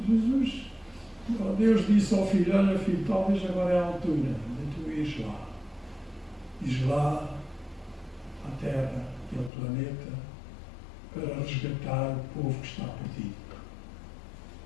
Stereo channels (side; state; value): right; drops out; at 9.5 s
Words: Jesus, Deus disse ao filho: olha filho, talvez agora é a altura de tu ires lá. Ires lá à Terra, aquele planeta, para resgatar o povo que está perdido.